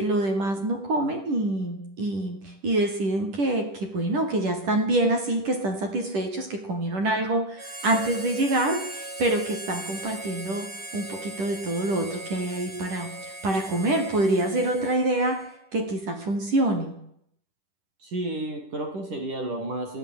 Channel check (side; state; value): left; late; 10 ms